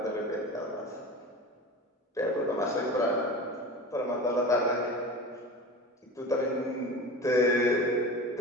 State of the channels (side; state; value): both; normal; correlation 0.32